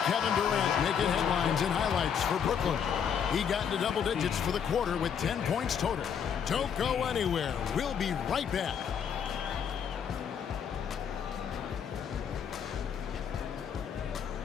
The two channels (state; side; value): quieter; right; 7.7 dB